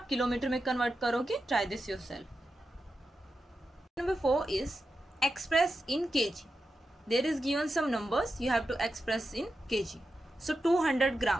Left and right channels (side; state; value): both; normal; correlation 0.89